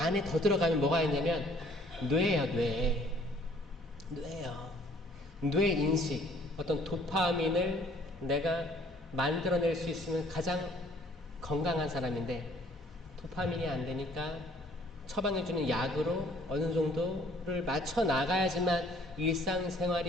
더 들어가면 뭐가 있냐면 뇌예요. 뇌예요. 뇌 인식, 어떤 도파민을 내가 만들어낼 수 있으면 가장 건강한 사람인데, 도파민이 안 되니까 처방해주는 약으로 어느 정도를 맞춰 나가야지만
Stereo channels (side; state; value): both; normal; correlation 0.59